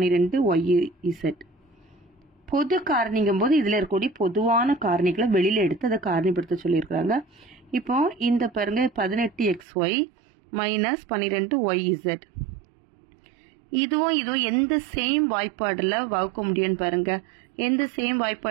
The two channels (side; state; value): left; drops out; at 9.7 s